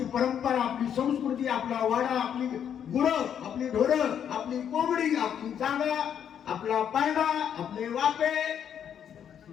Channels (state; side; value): quieter; right; 8.8 dB